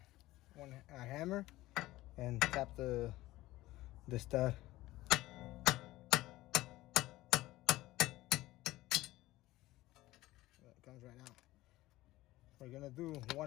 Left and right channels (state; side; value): quieter; right; 17.4 dB